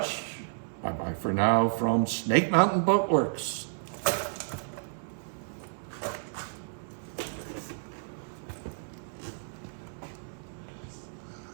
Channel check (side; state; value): left; silent; 57 dB below the other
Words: Bye-bye for now from Snake Mountain Boat Works.